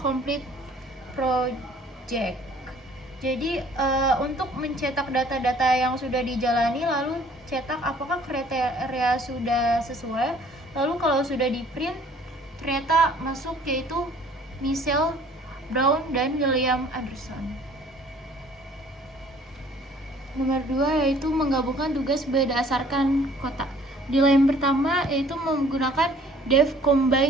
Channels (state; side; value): normal; both; correlation 0.55